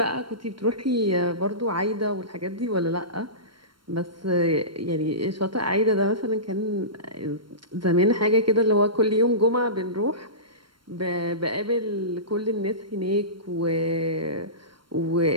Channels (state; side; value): late; left; 0.72 ms